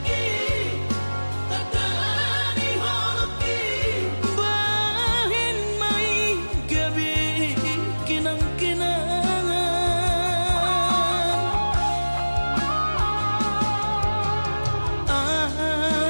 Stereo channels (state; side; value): inverted; both; correlation -1.00